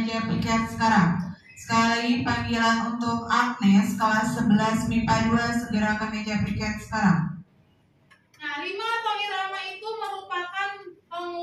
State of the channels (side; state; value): both; identical; correlation 1.00